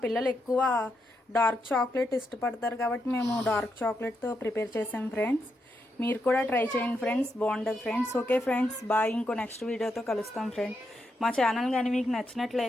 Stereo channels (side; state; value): both; normal; correlation 0.82